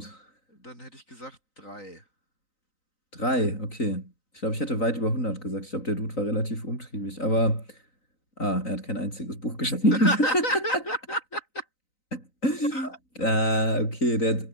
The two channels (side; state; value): right; late; 3.9 ms